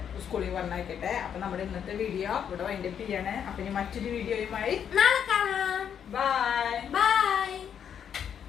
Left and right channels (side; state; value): right; quieter; 8.4 dB